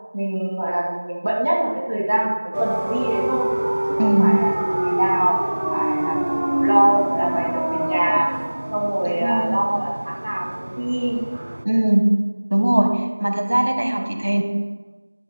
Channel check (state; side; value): inverted; both; correlation -1.00